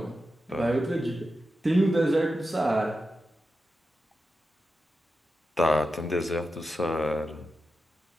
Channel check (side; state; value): both; normal; correlation 0.90